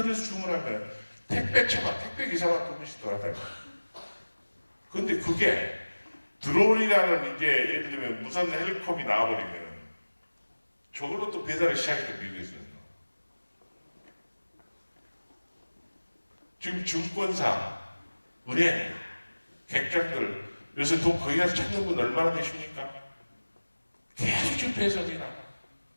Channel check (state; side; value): inverted; both; correlation -1.00